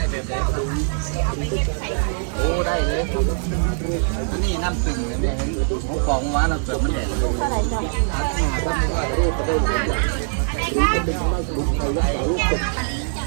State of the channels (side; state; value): left; silent; 63 dB below the other